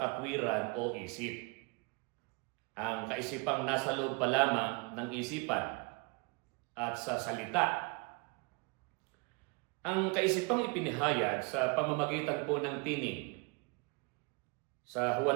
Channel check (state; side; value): quieter; left; 30.4 dB